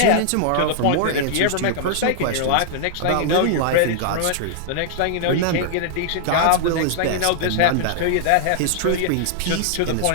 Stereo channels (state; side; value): different; both; correlation -0.01